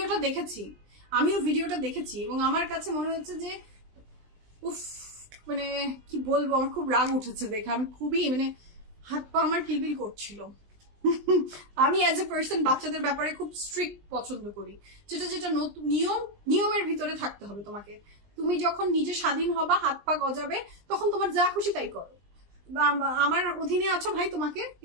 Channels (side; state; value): left; late; 20 ms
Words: ভিডিওটা দেখেছি এবং আমার কাছে মনে হচ্ছে যে উফ, মানে কি বলবো, আমার খুব রাগ উঠেছে দেখে। আমি খুবই মানে হাত পা আমার কিলবিল করছিল। আমি অ্যাজ এ পার্সন বাচ্চাদের ব্যাপারে খুব স্ট্রিক্ট পছন্দ করি, যেটা নতুন নিয়মের ভিতরে থাকতে হবে তোমাকে। তুমি যখন নিজে স্বাধীন হবা, হাত পা গজাবে, তখন তোমার যা খুশি তাই করো। আমার অধীনে আছো ভাই, তোমাকে